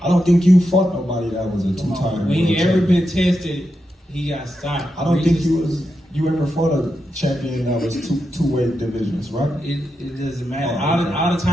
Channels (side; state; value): both; normal; correlation 0.87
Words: I don't think you fought nobody that was a 2-time world When he champion. ever been tested, he got stopped. I don't think you ever fought a champion that was two-weight divisions, right? It doesn't matter. Oh, okay. All the